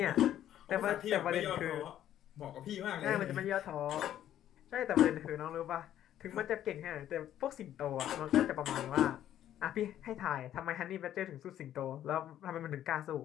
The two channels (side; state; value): right; quieter; 11.5 dB